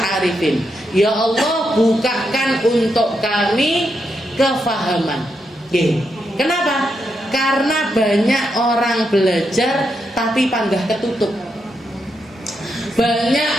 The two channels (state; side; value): normal; both; correlation 0.83